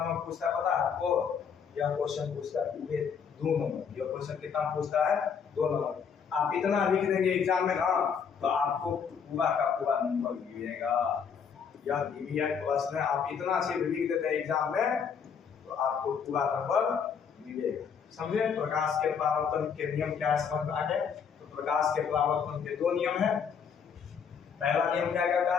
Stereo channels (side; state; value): right; quieter; 6.8 dB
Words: पूछता है पता है आपको, यह क्वेश्चन पूछता है 2 नंबर। यह क्वेश्चन कितना पूछता है, 2 नंबर। आप इतना लिख देंगे एग्जाम में ना, तो आपको पूरा का पूरा नंबर मिलेगा। यह प्रश्न आप इतना से लिख देते हैं एग्जाम में, तो आपको पूरा नंबर मिलेगा। समझे। प्रकाश के परावर्तन के नियम क्या समझ में आ गए। तो प्रकाश के परावर्तन के 2 नियम है। पहला नियम क्या कहता